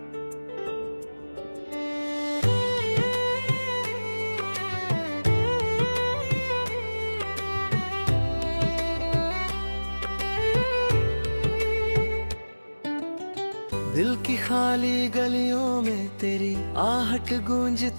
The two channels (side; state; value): both; inverted; correlation -1.00